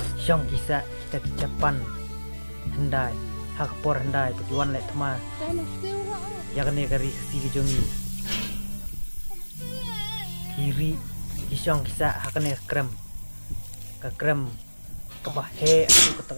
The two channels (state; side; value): inverted; both; correlation -1.00